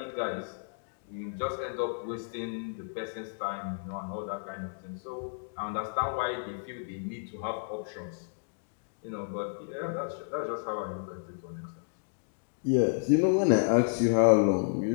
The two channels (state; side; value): silent; right; digital silence